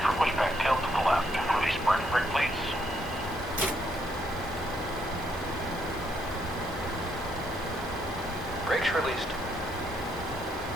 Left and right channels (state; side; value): normal; both; correlation 0.74